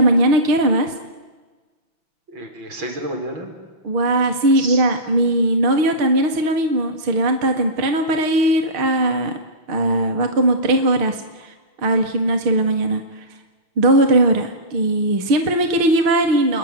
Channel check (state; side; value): late; left; 5.9 ms